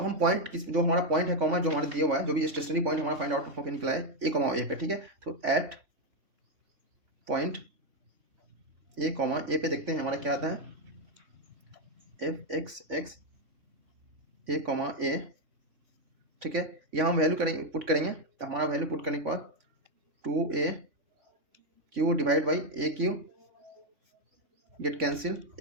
हम पॉइंट जो हमारा पॉइंट है कॉमा जो हमारे दिया हुआ है, जो भी स्टेशनरी पॉइंट हमारा फाइंड आउट होकर निकला है ए कॉमा ए पे, ठीक है। तो एट पॉइंट ए कॉमा ए पे देखते हैं हमारा क्या आता है, एफ एक्स ए कॉमा ए, ठीक है। यहाँ हम वैल्यू करेंगे, पुट करेंगे, तो हमारा वैल्यू पुट करने के बाद 2a Q divide by A Q get cancel,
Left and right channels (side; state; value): left; late; 3.5 ms